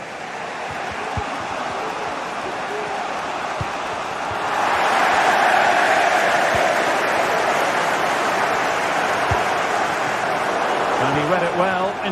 And he read it well,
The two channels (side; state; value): both; identical; correlation 1.00